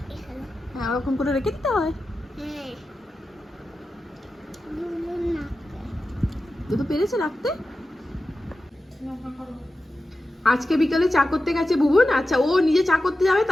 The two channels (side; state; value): both; normal; correlation 0.92